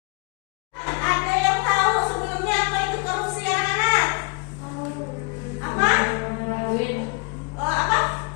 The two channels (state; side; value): quieter; right; 30.8 dB